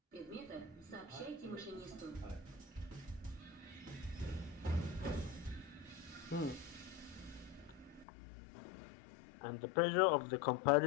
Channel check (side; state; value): right; drops out; at 8.1 s